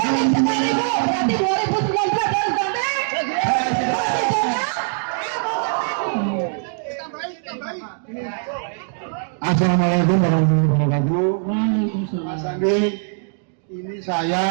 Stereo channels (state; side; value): silent; left; digital silence